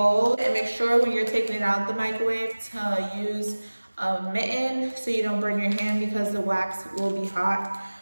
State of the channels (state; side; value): inverted; both; correlation -1.00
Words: and make sure when you're taking it out the microwave to use a mitten so you don't burn your hand because the wax will be hot.